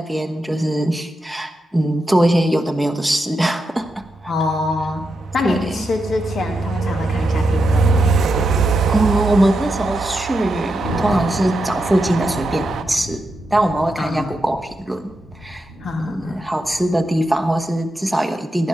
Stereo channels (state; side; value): normal; both; correlation 0.86